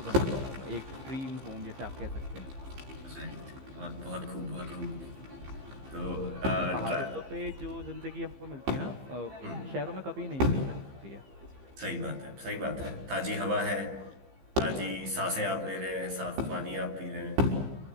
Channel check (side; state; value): left; late; 15 ms